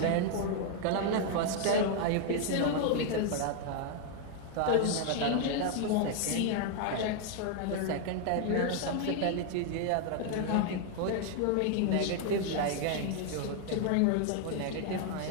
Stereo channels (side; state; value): both; different; correlation 0.00